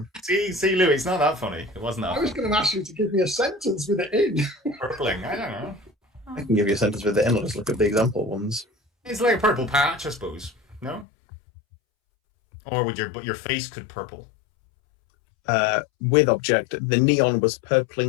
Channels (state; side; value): drops out; right; at 11.1 s